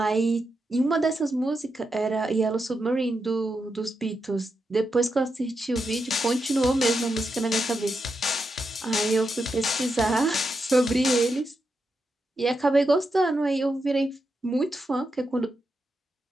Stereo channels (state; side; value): normal; both; correlation 0.86